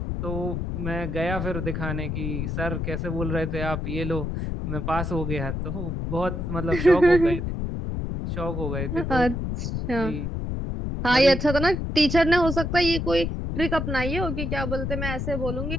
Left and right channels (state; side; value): noise; left; rumble, 3 dB below the sound